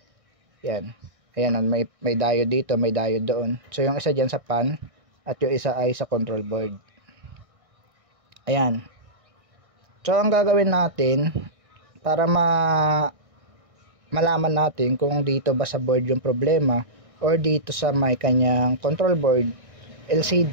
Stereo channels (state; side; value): late; left; 1.6 ms